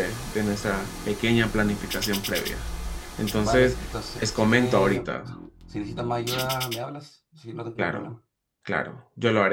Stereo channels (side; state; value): both; identical; correlation 1.00